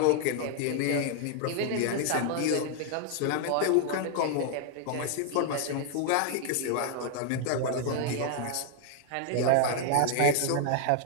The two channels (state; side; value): different; both; correlation 0.00